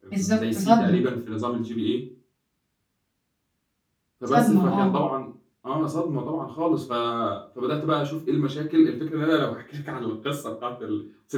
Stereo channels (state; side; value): identical; both; correlation 1.00